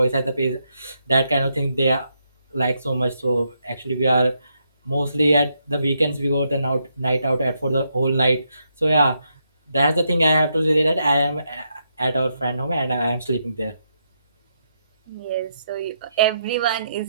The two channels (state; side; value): inverted; both; correlation -0.80